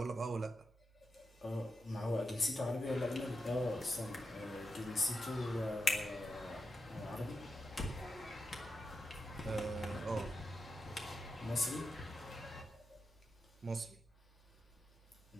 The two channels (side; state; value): both; normal; correlation 0.88